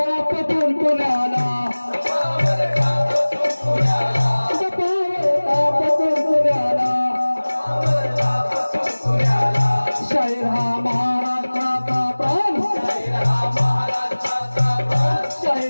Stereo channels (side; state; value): both; inverted; correlation -1.00